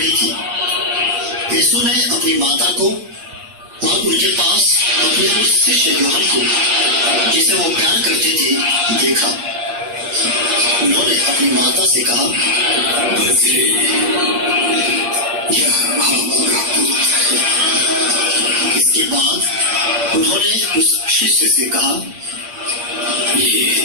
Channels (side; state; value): left; late; 8.6 ms